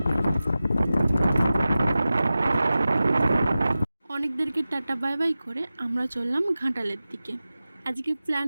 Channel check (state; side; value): inverted; both; correlation -0.95